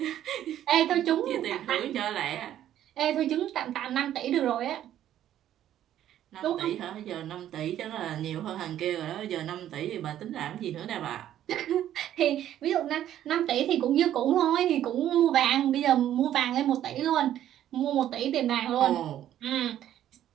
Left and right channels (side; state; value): left; quieter; 11.6 dB